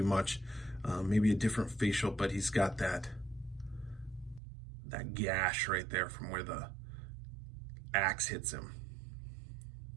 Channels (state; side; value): drops out; left; at 4.4 s